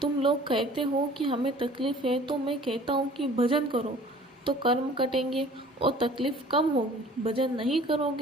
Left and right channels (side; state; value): both; normal; correlation 0.49